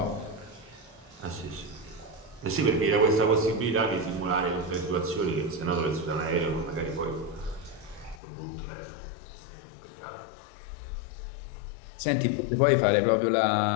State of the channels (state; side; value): drops out; right; at 8.2 s